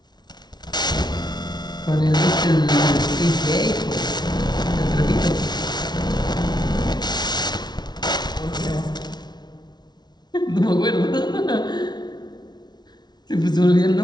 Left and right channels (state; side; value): late; right; 0.20 ms